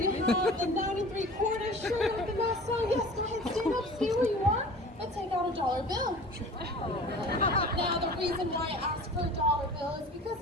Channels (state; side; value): normal; both; correlation 0.41